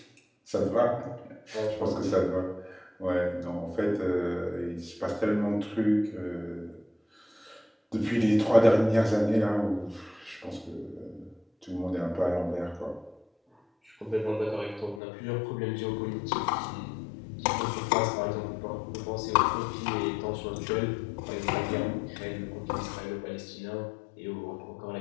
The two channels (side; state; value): right; drops out; at 15.0 s